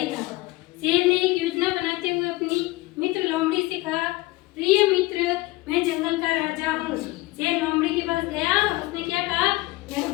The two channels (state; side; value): quieter; right; 20.5 dB